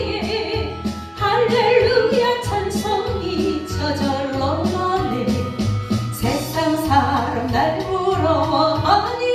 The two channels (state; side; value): identical; both; correlation 1.00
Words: 할렐루야 찬송이 저절로 나네. 세상 사람 날